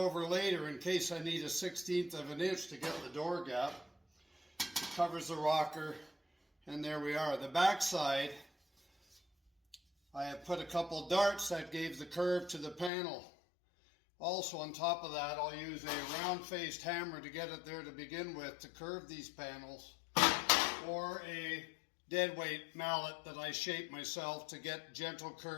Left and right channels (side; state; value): right; drops out; at 12.9 s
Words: later in case I need a 1/16 of an inch to get the door gap. It covers the rocker. And there we are. The back side, I have put a couple darts that gave the curve to the panel. Also on top of that, I'll use a round-faced hammer to get it there to begin with to curve these panels, or a deadweight mallet that I shape myself to get gentle